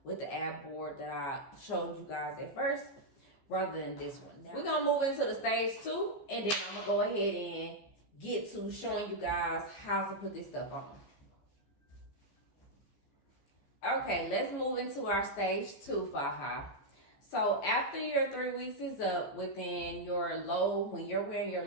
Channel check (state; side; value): late; right; 15 ms